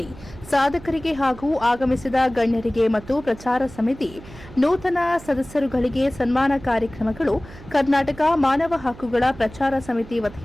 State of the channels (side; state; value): right; noise; hum, 18 dB below the sound